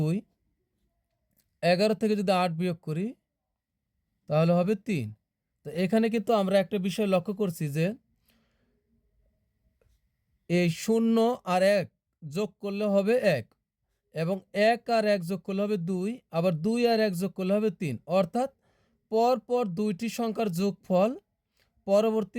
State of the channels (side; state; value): both; identical; correlation 1.00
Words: 11 থেকে যদি 8 বিয়োগ করি তাহলে হবে 3। তো এখানে কিন্তু আমরা একটা বিষয় লক্ষ্য করছি যে এই 0 আর 1 যোগ করলে হবে 1 এবং 1 আর 1 যোগ করলে হবে 2, আবার 2 আর 1 যোগ করলে হবে 3। অর্থাৎ পরপর দুইটি সংখ্যার যোগফল